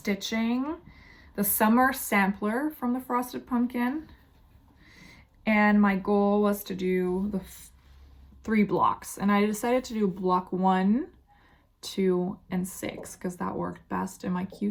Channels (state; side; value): identical; both; correlation 1.00